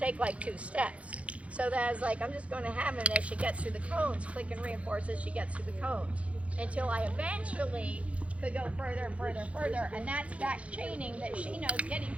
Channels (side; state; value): left; late; 0.063 ms